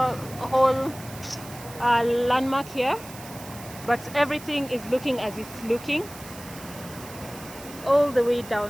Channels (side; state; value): right; noise; hiss, 16 dB below the sound